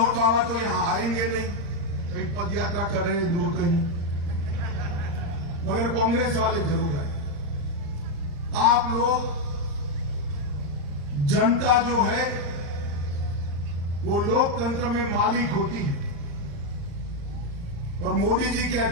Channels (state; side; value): late; left; 35 ms